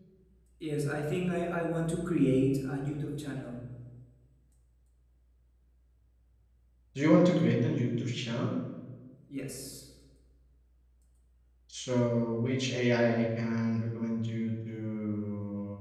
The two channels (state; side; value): identical; both; correlation 1.00